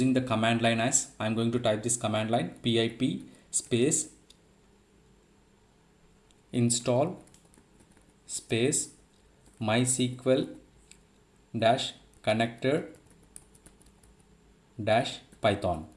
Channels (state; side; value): identical; both; correlation 1.00